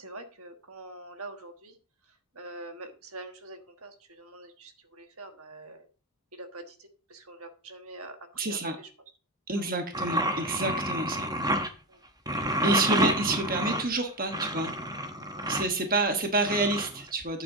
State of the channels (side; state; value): both; normal; correlation 0.16